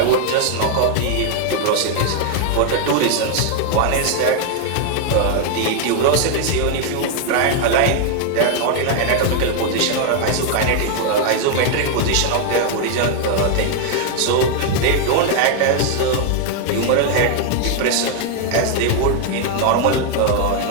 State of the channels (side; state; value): both; different; correlation 0.00